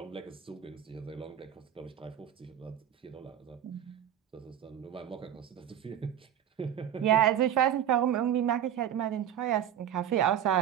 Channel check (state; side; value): quieter; left; 10.3 dB